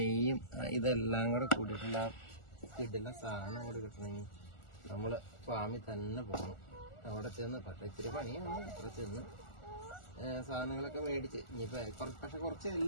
ഇതെല്ലാം കൂടെ കൂടിയിട്ടുള്ള കിട്ടുന്ന സാധനം കൂടെ കിട്ടണമെങ്കിൽ നമ്മൾ ഫാമിൽ തന്നെ പോകണം. അവിടെ ചെന്ന് പക്ഷേ ഇത്തിരി പണിയാണ്. അവിടെ ചെന്ന് സാധനങ്ങളൊക്കെ മേടിച്ച് ഇനിയിപ്പോൾ പക്ഷെ കുറച്ച്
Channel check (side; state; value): right; late; 1.4 ms